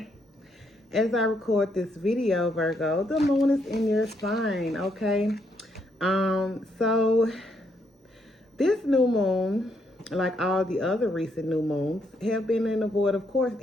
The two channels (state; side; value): normal; both; correlation 0.75